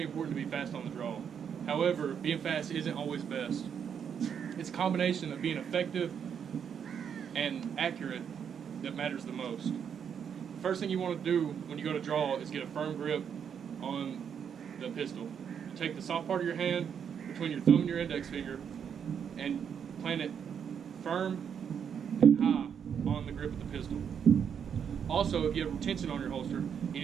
important to be fast on the draw. However, being fast isn't always best. It's a combination of being effective and accurate that matters the most. The first thing you want to do when you go to draw is get a firm grip on the pistol. You take the soft part of your hand between your thumb and your index finger and plant it firm and high on the grip of the pistol. Also, if you have retention on your holster, you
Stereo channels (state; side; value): quieter; left; 7.7 dB